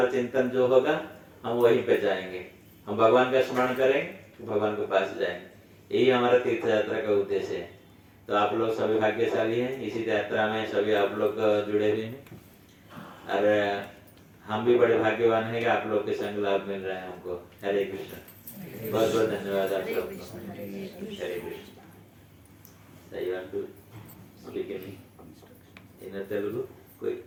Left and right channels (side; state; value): both; identical; correlation 1.00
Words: चिंतन जो होगा हम वहीं पे जाएंगे, हम भगवान का स्मरण करेंगे भगवान के पास जाएंगे, यही हमारा तीर्थ यात्रा का उद्देश्य है। तो आप लोग सभी भाग्यशाली हैं, इसी यात्रा में सभी आप लोग जुड़े हुए हैं और हम भी बड़े भाग्यवान हैं कि आप लोग के संग लाभ मिल रहा है हमको। हरे कृष्ण, बहुत बहुत धन्यवाद आप लोग। हरे कृष्ण। सही बात टू स्पीक इन तेलुगु, कोई